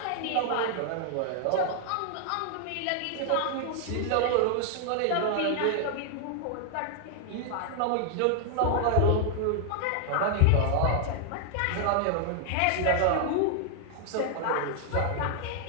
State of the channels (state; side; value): different; both; correlation 0.00